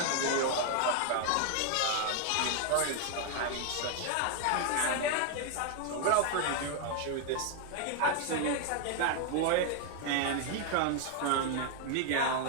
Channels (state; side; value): different; both; correlation 0.00